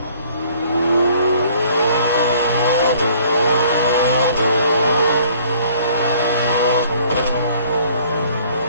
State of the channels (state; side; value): inverted; both; correlation -0.57